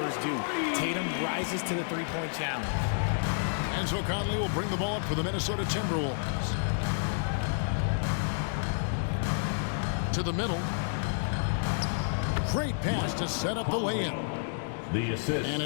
do. Tatum rises to the three-point challenge. And so Conley will bring the ball up for the Minnesota Timberwolves. To the middle. Great pass to set up the lay-in. The assist. And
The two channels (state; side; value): silent; right; digital silence